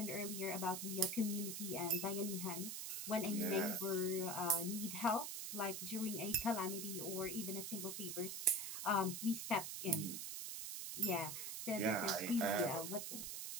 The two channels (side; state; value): right; noise; hiss, 5 dB below the sound